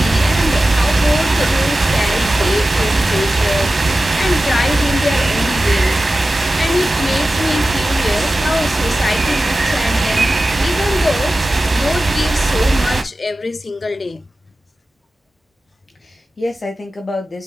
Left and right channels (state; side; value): normal; both; correlation 0.94